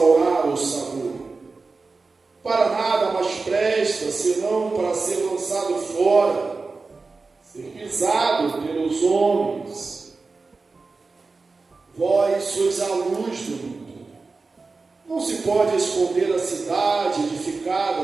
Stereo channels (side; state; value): left; quieter; 4.0 dB